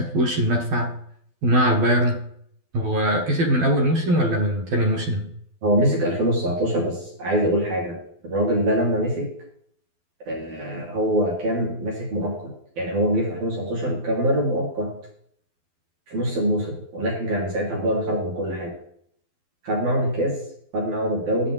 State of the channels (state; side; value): late; left; 12 ms